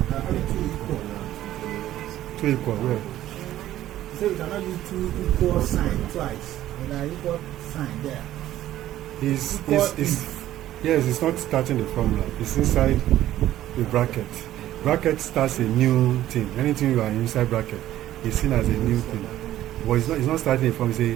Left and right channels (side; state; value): left; quieter; 13.4 dB